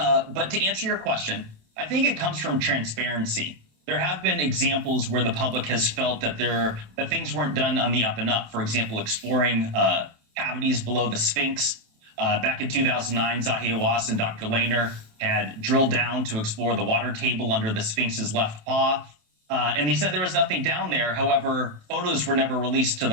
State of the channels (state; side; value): late; left; 27 ms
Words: to answer your question, I think it comes from transparency. There have been examples where the public has felt that things weren't done on the up and up. For example, exploring cavities below the Sphinx. Back in 2009, Zahi Hawass and Dr. Lehner had drilled down to explore the water table under the Sphinx's left paw. And they said there was nothing down there. However, photos were never released to